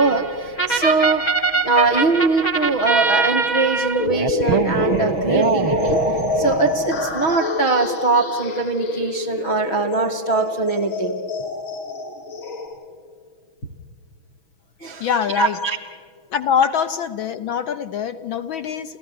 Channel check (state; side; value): late; right; 6.2 ms